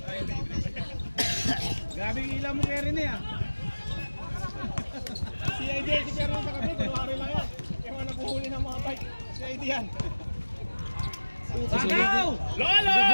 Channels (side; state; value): both; inverted; correlation -1.00